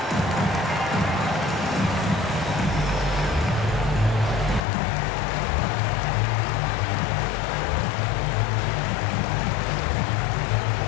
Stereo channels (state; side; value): drops out; right; at 4.6 s